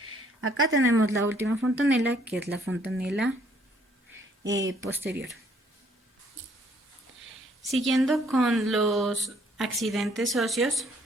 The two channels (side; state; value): both; normal; correlation 0.64